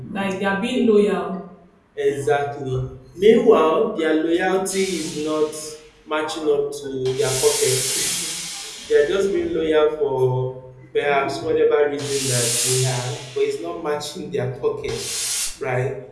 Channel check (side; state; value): both; identical; correlation 1.00